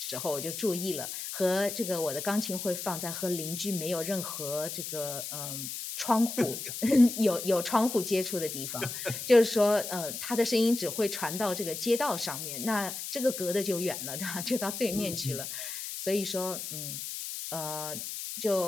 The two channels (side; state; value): left; noise; hiss, 6 dB below the sound